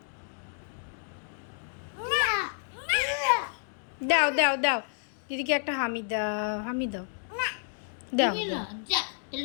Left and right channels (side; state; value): right; silent; 58 dB below the other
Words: দাও দাও দাও দিদিকে একটা হামি দাও, হামি দাও। দাও দেবে না, যা